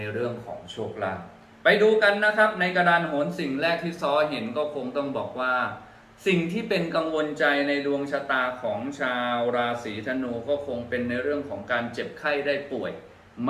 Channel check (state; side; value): identical; both; correlation 1.00